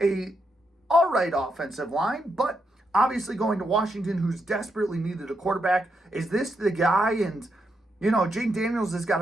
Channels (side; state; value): both; normal; correlation 0.81